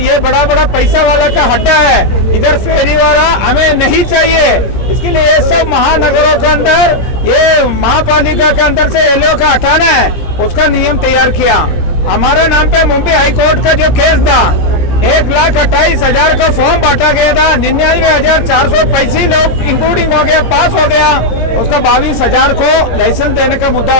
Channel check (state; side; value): late; right; 17 ms